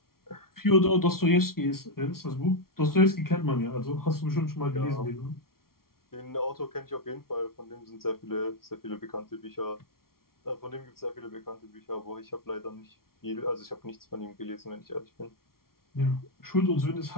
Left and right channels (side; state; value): right; late; 0.93 ms